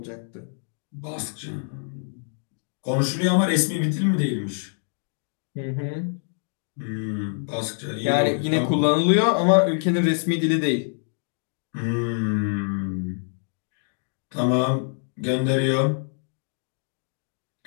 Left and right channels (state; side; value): silent; right; digital silence